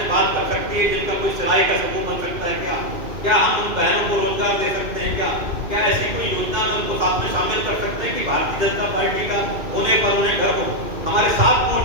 बात कर सकती है जिनका कोई सिलाई का समूह बन सकता है? क्या हम उन बहनों को रोजगार दे सकते हैं? क्या ऐसी कोई योजना में उनको साथ में शामिल कर सकते हैं कि भारतीय जनता पार्टी का होने पर उन्हें घर हो? हमारे 7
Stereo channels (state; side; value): late; left; 2.5 ms